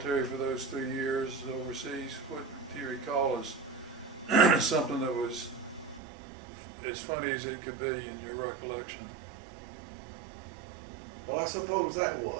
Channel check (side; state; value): left; drops out; at 6.0 s